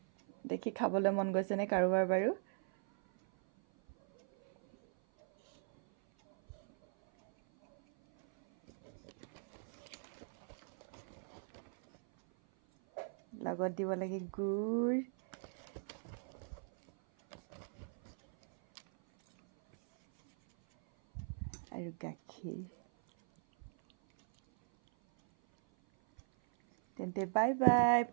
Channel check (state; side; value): silent; left; 52 dB below the other